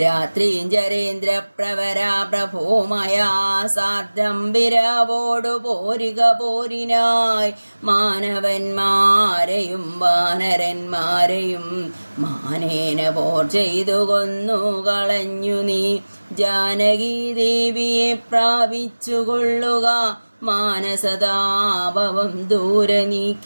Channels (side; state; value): both; inverted; correlation -1.00